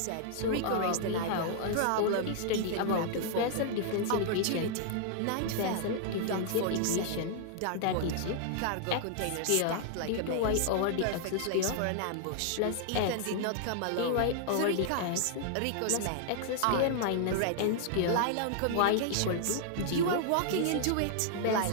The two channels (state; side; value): different; both; correlation -0.01